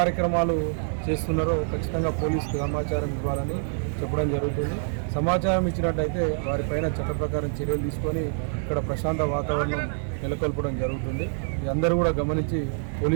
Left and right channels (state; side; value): silent; left; 61 dB below the other